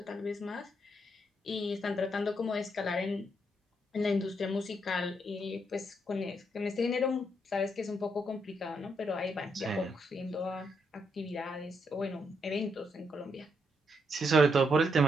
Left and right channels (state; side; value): normal; both; correlation 0.77